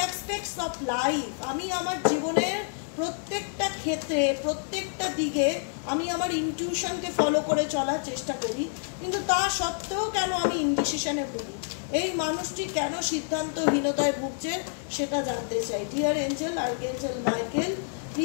aspects of life. আমি আমার জীবনের প্রত্যেকটা ক্ষেত্রে, প্রত্যেকটা দিকে আমি আমার ইনটিউশনকে ফলো করে চলার চেষ্টা করি, কিন্তু তা সত্ত্বেও কেন আমি ইনডিসিশনে ভুগি? এই মানুষটি কেন সিদ্ধান্তহীনতায় ভুগছে সেটা জানতে চাই। Dear angel, archangel Michael,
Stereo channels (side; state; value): right; silent; digital silence